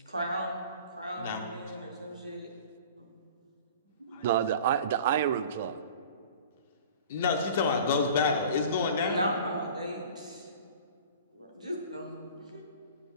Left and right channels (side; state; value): both; inverted; correlation -0.43